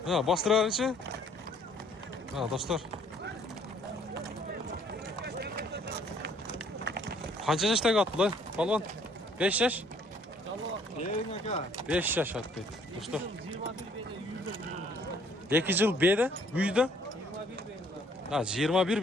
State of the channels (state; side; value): normal; both; correlation 0.61